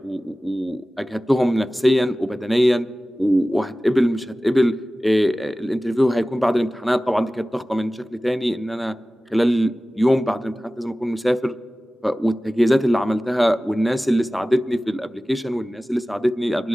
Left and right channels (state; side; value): normal; both; correlation 0.97